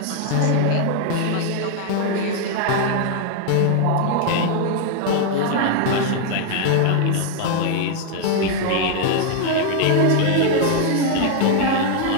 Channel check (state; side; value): different; both; correlation 0.00